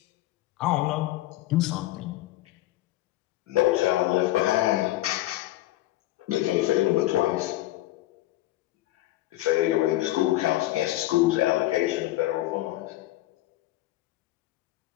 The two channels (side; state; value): right; quieter; 16.2 dB